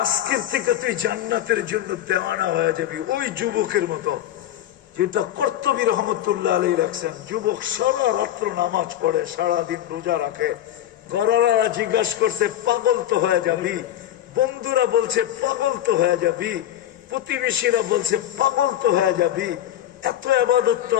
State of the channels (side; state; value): right; quieter; 12.3 dB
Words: আজকের থেকে তুই জান্নাতের জন্য দেওয়ানা হয়ে যাবি। ওই যুবকের মতো যেটা কর্তবী রহমতুল্লাহ আলাইহি রাখছেন। যুবক সারা রাত্র নামাজ পড়ে, সারাদিন রোজা রাখে। ঘরওয়ালা জিজ্ঞাসা করছে পাগল তো হয়ে যাবি, বন্ধুরা বলছে পাগল তো হয়ে যাবি, প্রতিবেশীরা বলছে পাগল তো হয়ে যাবি, এত ইবাদত তো